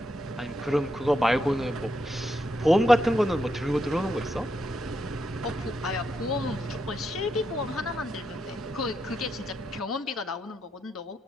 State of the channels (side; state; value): both; normal; correlation 0.82